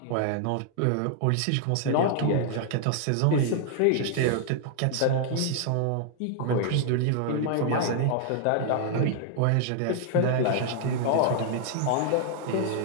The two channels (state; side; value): different; both; correlation 0.00